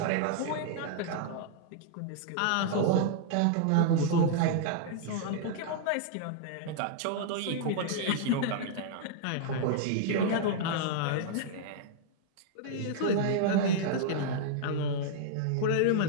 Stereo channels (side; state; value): both; different; correlation -0.01